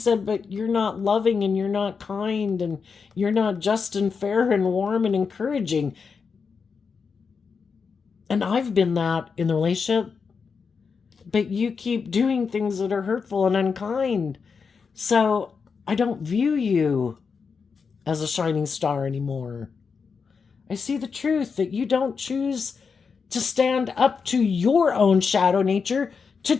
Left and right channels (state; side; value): quieter; right; 5.5 dB